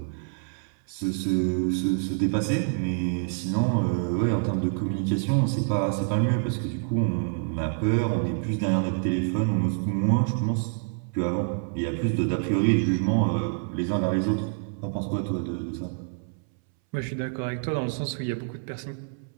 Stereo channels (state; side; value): silent; left; 60 dB below the other